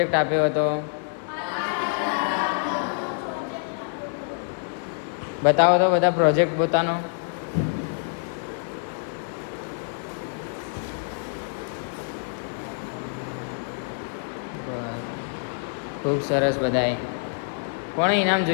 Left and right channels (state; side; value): silent; right; digital silence